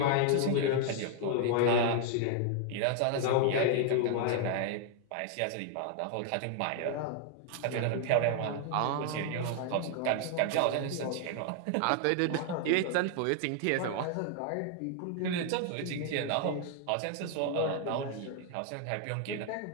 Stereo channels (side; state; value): both; different; correlation 0.00